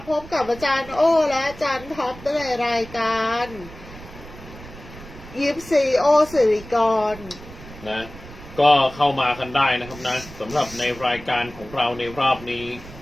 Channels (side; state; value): right; noise; rumble, 17 dB below the sound